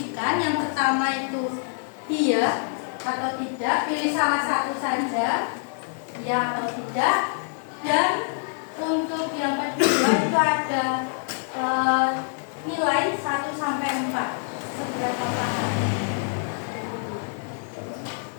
Yang pertama itu iya atau tidak, pilih salah satu saja, ya atau tidak. Dan untuk yang kedua itu ada nilai 1 sampai 4, seberapa paham.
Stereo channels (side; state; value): right; silent; 59 dB below the other